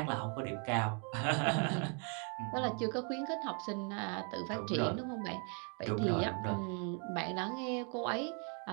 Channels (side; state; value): left; quieter; 39.1 dB